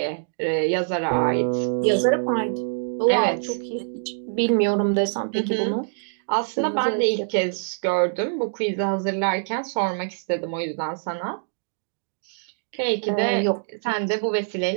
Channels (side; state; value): left; silent; digital silence